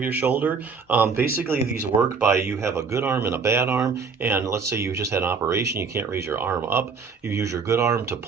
your shoulder. Basically, these work by you have a good arm and a bad arm, and let's say you just had an operation, you can't raise your arm up. You use your good arm to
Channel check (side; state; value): left; quieter; 5.3 dB